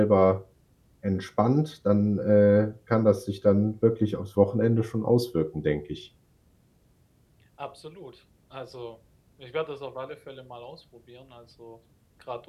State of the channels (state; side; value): identical; both; correlation 1.00